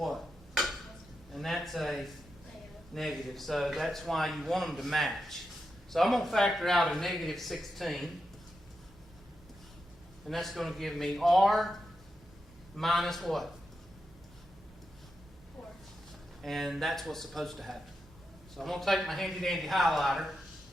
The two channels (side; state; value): both; normal; correlation 0.87